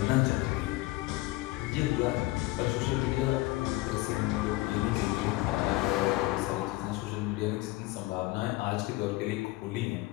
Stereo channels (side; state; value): right; quieter; 19.7 dB